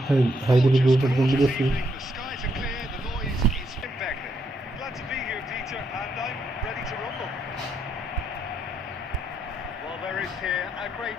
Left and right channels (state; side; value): normal; both; correlation 0.76